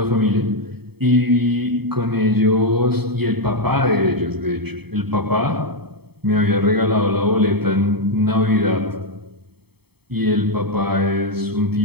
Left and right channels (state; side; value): late; left; 0.97 ms